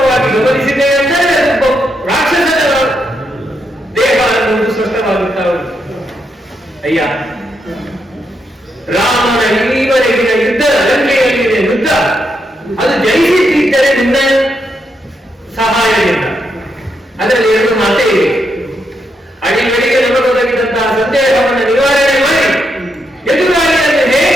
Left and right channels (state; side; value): normal; both; correlation 0.81